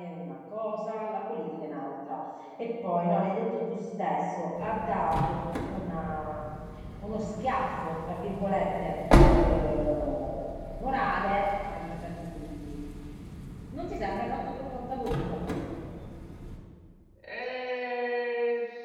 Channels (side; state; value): both; identical; correlation 1.00